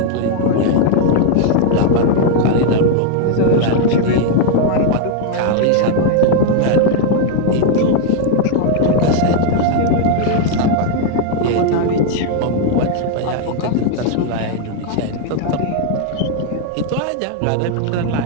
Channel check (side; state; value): both; different; correlation 0.00